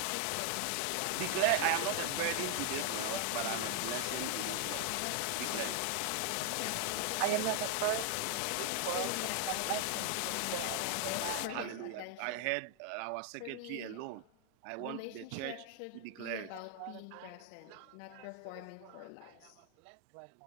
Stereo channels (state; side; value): different; both; correlation 0.00